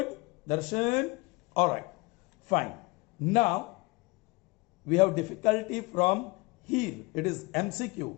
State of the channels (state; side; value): quieter; right; 24.6 dB